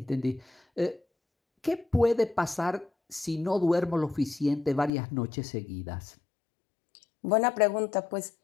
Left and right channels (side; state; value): right; drops out; at 4.9 s